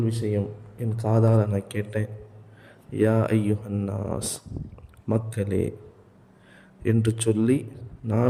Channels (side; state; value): both; identical; correlation 1.00